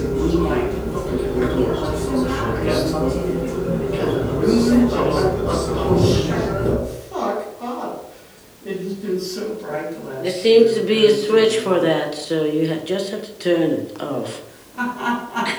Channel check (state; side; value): identical; both; correlation 1.00